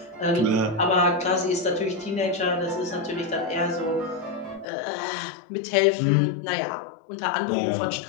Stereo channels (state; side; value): drops out; right; at 4.7 s